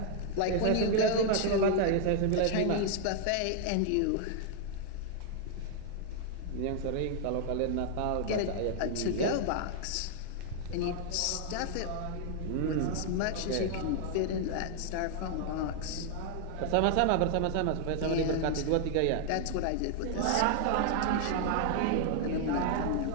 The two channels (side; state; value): both; different; correlation 0.00